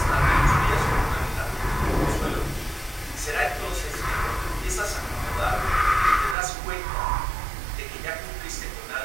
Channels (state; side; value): drops out; left; at 6.4 s